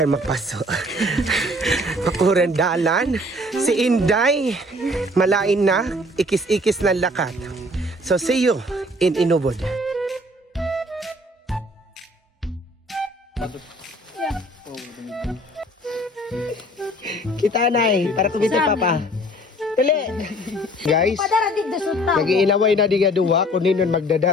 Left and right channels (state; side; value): normal; both; correlation 0.54